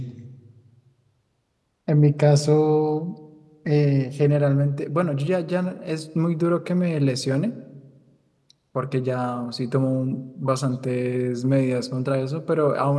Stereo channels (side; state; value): both; identical; correlation 1.00